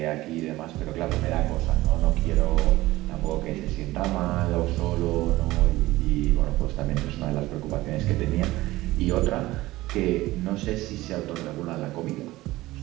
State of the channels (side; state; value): left; quieter; 17.9 dB